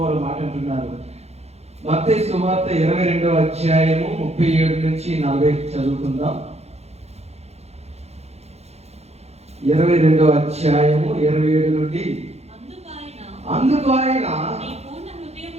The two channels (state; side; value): late; left; 0.31 ms